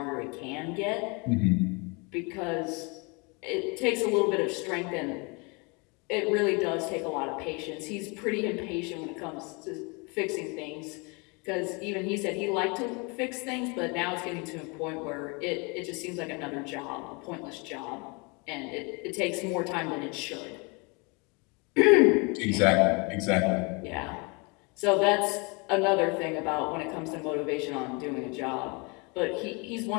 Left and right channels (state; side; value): quieter; right; 30.2 dB